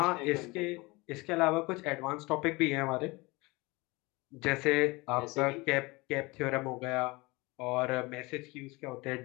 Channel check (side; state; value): right; quieter; 23.9 dB